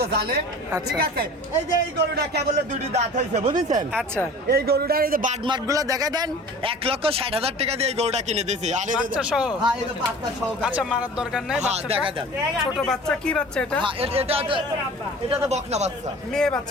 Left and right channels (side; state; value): both; normal; correlation 0.42